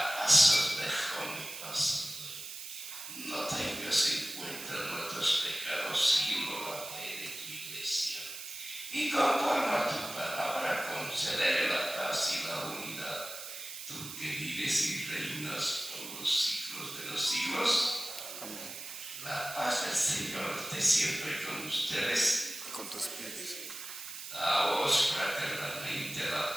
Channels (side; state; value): right; noise; hiss, 9 dB below the sound